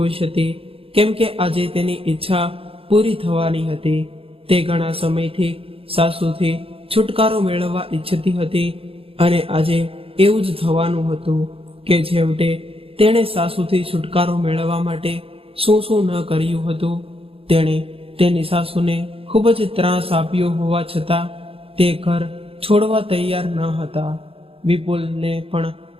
હતી, કેમ કે આજે તેની ઈચ્છા પૂરી થવાની હતી. તે ઘણા સમયથી સાસુથી છુટકારો મેળવવા ઈચ્છતી હતી અને આજે એવું જ થવાનું હતું કે છેવટે તેણે સાસુથી છુટકારો મેળવવા માટે શું શું ન કર્યું હતું. તેણે તેની સાસુને ખૂબ જ ત્રાસ આપ્યો હોવા છતાં તે ઘર છોડવા તૈયાર ન હતા. વિપુલને પણ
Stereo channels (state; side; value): late; left; 0.27 ms